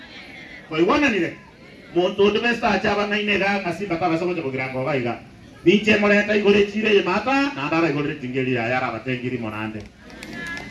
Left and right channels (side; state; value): both; identical; correlation 1.00